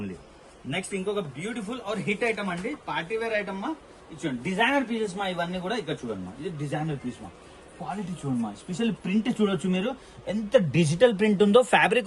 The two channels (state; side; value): identical; both; correlation 1.00